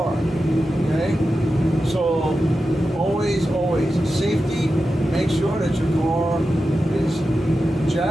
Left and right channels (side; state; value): both; normal; correlation 0.91